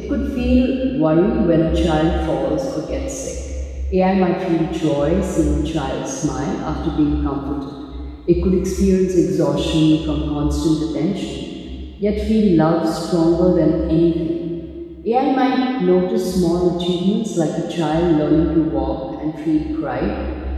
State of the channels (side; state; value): both; identical; correlation 1.00